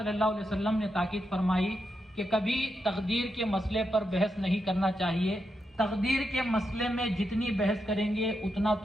اللہ علیہ وسلم نے تاکید فرمائی کہ کبھی تقدیر کے مسئلے پر بحث نہیں کرنا چاہیے۔ تقدیر کے مسئلے میں جتنی بحث کریں گے اتنا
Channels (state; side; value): normal; both; correlation 0.85